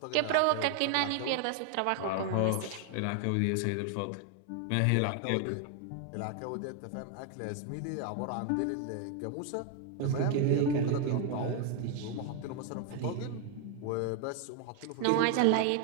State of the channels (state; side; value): different; both; correlation 0.00